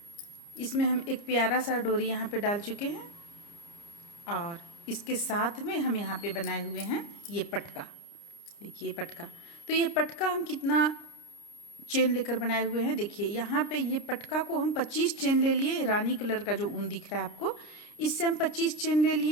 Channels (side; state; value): right; late; 29 ms